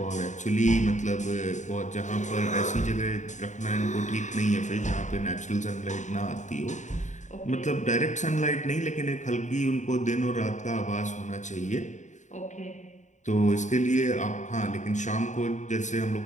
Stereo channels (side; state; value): right; late; 0.35 ms